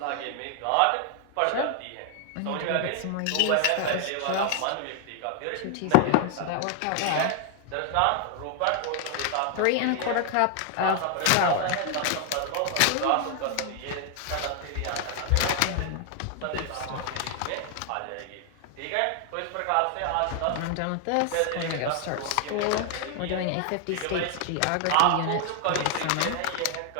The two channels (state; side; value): different; both; correlation 0.00